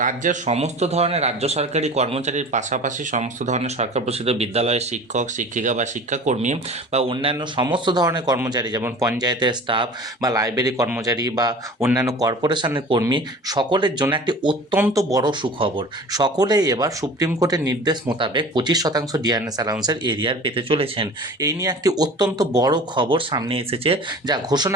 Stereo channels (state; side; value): normal; both; correlation 0.41